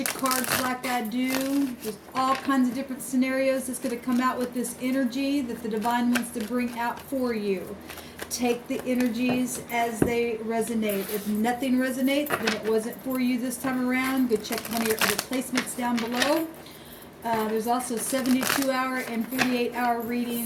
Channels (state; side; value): identical; both; correlation 1.00